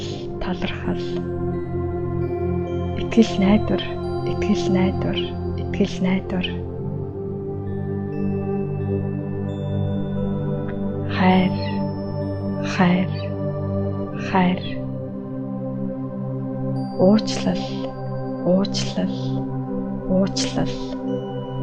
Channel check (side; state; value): both; identical; correlation 1.00